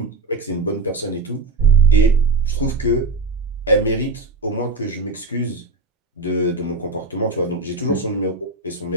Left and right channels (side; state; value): left; quieter; 3.5 dB